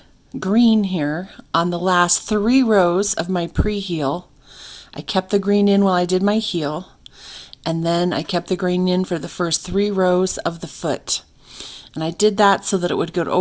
green here on the last 3 rows of my pre-heel. I kept the green in while I did my heel, and then I kept the green in for the first 3 rows of the foot. And I did that so that it would go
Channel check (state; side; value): identical; both; correlation 1.00